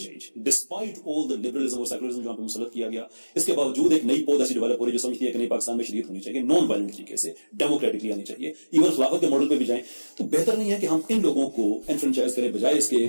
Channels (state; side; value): inverted; both; correlation -1.00